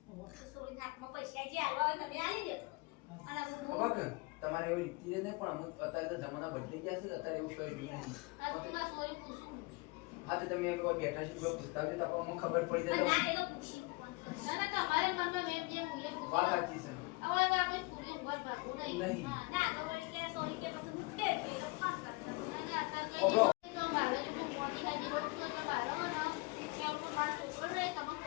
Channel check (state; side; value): quieter; right; 26.2 dB